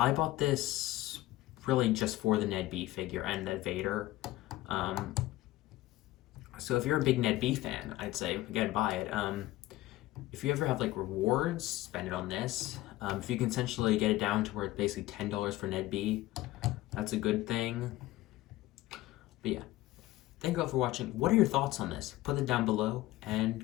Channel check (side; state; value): right; quieter; 16.8 dB